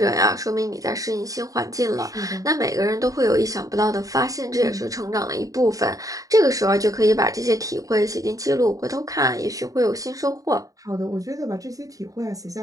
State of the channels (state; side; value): late; left; 0.17 ms